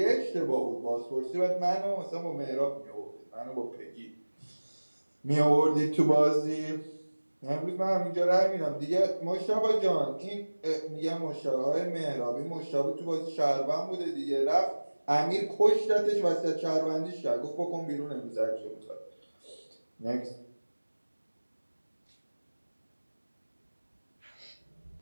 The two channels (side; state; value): both; inverted; correlation -1.00